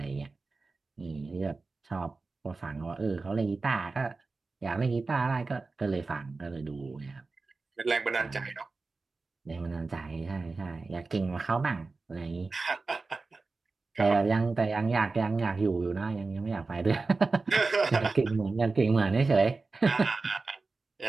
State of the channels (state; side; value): quieter; left; 3.8 dB